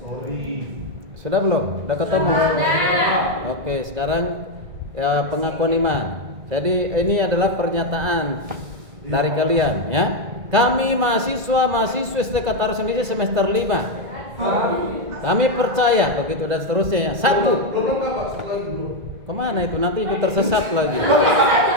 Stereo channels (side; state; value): left; late; 2.0 ms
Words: Sudah belum? Sudah ketemu? Oke, sekarang ya pengakuan iman. Jadi ini adalah pernyataan dari kalian ya. Kami mahasiswa Sekretaris Indonesia semester 5. Kami percaya begitu dan seterusnya ya. 1. Kemana itu? Nanti ikut tersesat lagi.